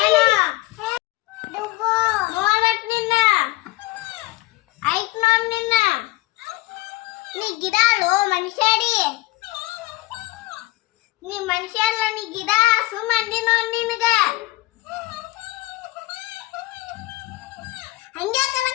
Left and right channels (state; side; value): quieter; right; 19.7 dB